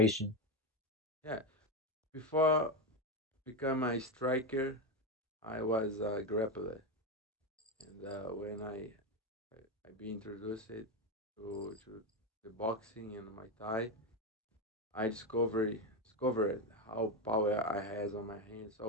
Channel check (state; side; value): normal; both; correlation 0.12